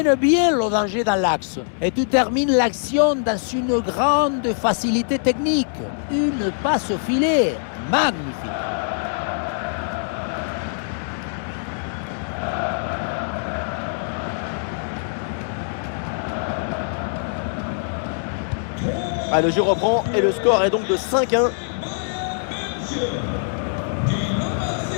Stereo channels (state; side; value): silent; right; digital silence